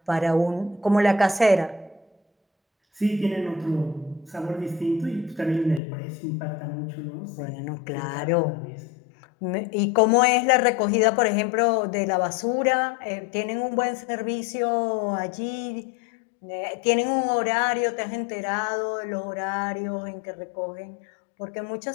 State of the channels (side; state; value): right; drops out; at 5.8 s